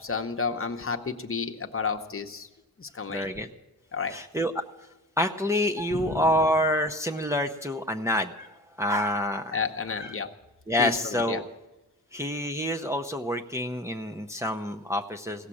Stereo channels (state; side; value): normal; both; correlation 0.34